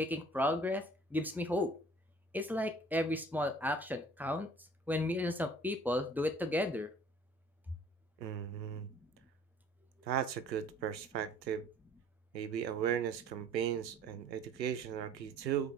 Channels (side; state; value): both; normal; correlation 0.53